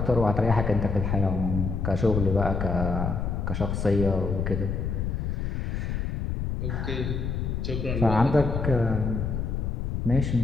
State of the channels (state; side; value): noise; left; rumble, 1 dB below the sound